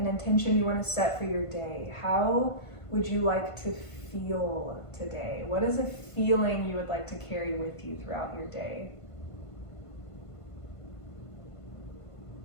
intention you want to set for your day. How would you like to feel today? What is a feeling you would like to carry with you throughout your day?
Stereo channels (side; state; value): right; late; 1.5 ms